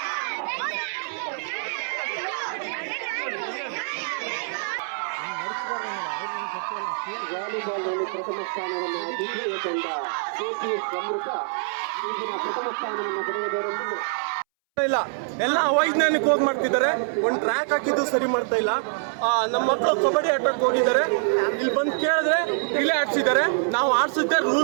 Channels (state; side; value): silent; left; 62 dB below the other